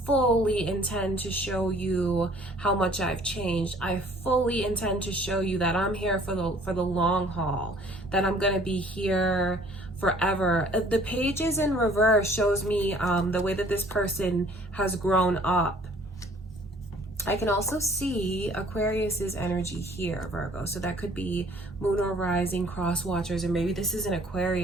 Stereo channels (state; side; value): normal; both; correlation 0.55